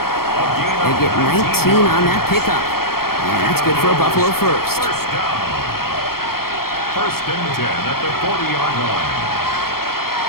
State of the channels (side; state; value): right; late; 0.94 ms